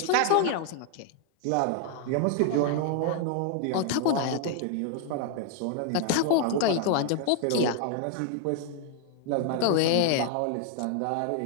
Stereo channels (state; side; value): different; both; correlation 0.00